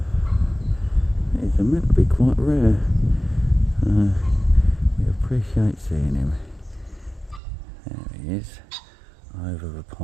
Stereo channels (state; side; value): drops out; left; at 7.4 s